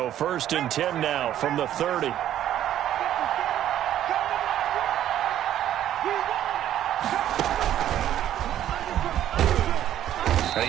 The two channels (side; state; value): left; quieter; 11.6 dB